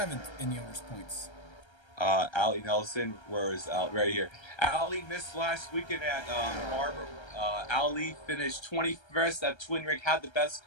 in the owner's points. Allie Nelson, where is Allie? Right here. Allie missed last weekend at Barber. Allie finished 21st at Twin Rig, had the best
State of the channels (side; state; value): right; late; 1.3 ms